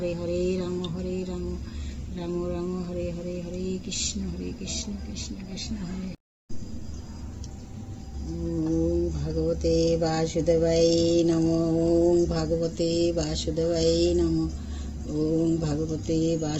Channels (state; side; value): identical; both; correlation 1.00